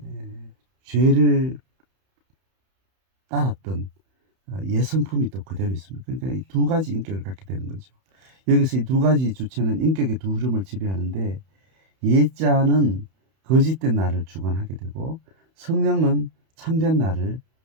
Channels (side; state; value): left; late; 31 ms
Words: 죄를 따랐던 예성품이 또 그대로 있습니다. 그러니까 이 두 가지 인격을 갖게 되는 거죠. 여기서 이 두 가지 주체는 인격의 두 흐름을 지배하는데 예자는 거짓된 나를 주관하게 되고 성령은 참된 나를